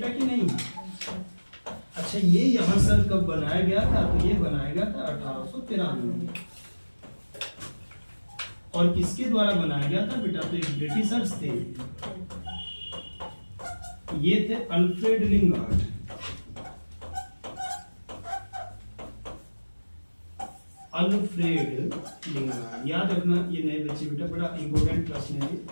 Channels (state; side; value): inverted; both; correlation -1.00